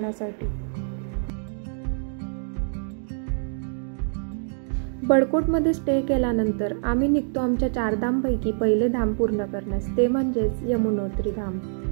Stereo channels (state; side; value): silent; left; digital silence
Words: बळकोटमध्ये स्टे केल्यानंतर आम्ही निघतो आमच्या 4 धामपैकी पहिले धाम पूर्ण करण्यास, ते म्हणजेच यमुनोत्री धाम.